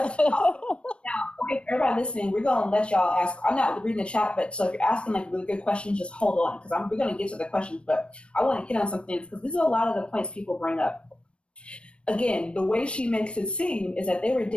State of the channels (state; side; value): late; right; 0.058 ms